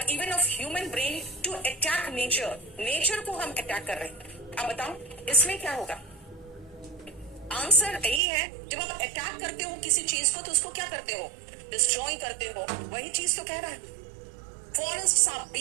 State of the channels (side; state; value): left; drops out; at 8.2 s